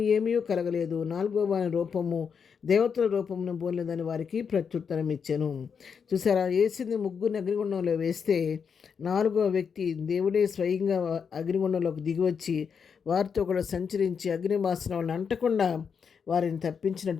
ఏమీ కలగలేదు. 4వ వాని రూపము దేవతల రూపమును పోలేదని వారికి ప్రత్యుత్తరం ఇచ్చాను. చూసారా, వేసింది ముగ్గురిని అగ్నిగుండంలో వేస్తే 4వ వ్యక్తి దేవుడే స్వయంగా అగ్నిగుండంలోకి దిగివచ్చి వారితో కూడా సంచరించి అగ్ని వాసన వాళ్ళని అంటకుండా వారిని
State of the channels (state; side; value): quieter; right; 6.5 dB